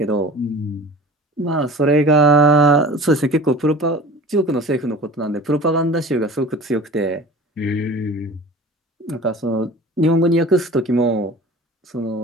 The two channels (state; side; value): normal; both; correlation 0.41